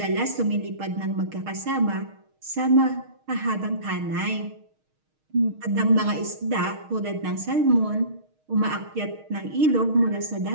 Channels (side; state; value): left; late; 6.4 ms